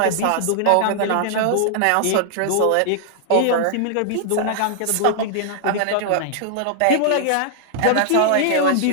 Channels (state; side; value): different; both; correlation -0.01